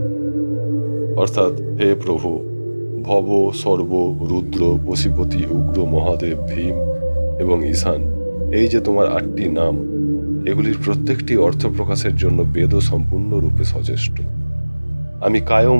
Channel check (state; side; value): inverted; both; correlation -1.00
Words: অর্থাৎ, হে প্রভু, ভব সর্ব রুদ্র পশুপতি উগ্র মহাদেব ভীম এবং ঈশান, এই যে তোমার 8টি নাম, এগুলির প্রত্যেকটি অর্থ প্রকাশের জন্য বেদ সম্পূর্ণরূপে সচেষ্ট। আমি কায়